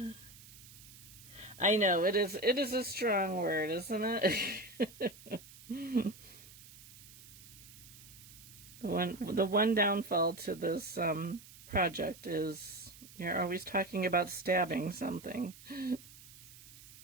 I know, it is a strong word, isn't it? The one downfall to this project is you're always talking about stabbing something.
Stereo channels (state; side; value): noise; right; hiss, 19 dB below the sound